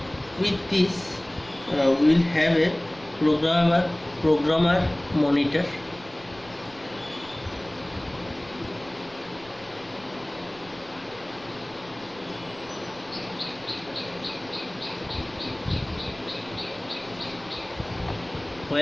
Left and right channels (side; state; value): right; noise; rumble, 22 dB below the sound